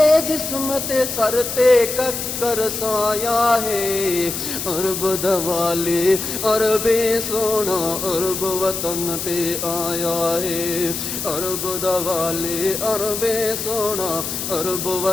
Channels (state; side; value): noise; left; hiss, 4 dB below the sound